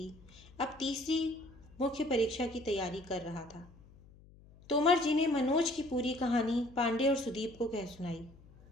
अब तीसरी मुख्य परीक्षा की तैयारी कर रहा था। तोमर जी ने मनोज की पूरी कहानी पांडे और सुदीप को कह सुनाई।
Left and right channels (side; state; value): left; noise; hum, 23 dB below the sound